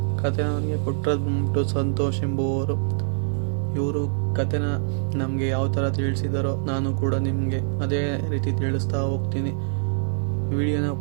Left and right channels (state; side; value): silent; left; digital silence